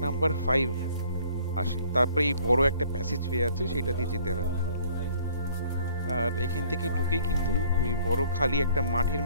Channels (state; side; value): inverted; both; correlation -0.57